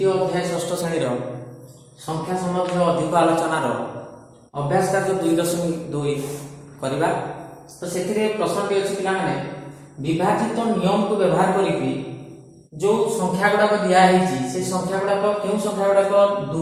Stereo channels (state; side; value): identical; both; correlation 1.00